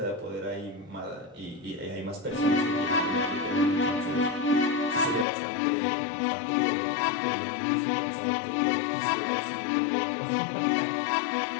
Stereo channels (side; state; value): right; drops out; at 5.2 s